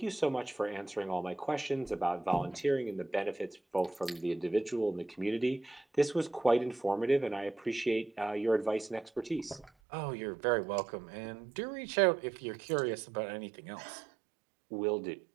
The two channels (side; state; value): left; drops out; at 9.7 s